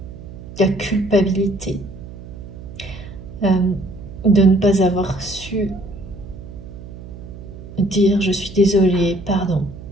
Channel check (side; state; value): right; noise; hum, 14 dB below the sound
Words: qui a culpabilité de ne pas avoir su dire je suis désolée, pardon.